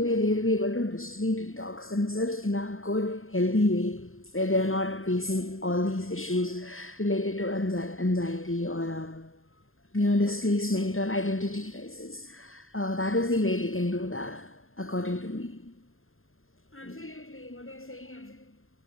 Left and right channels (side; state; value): right; late; 0.61 ms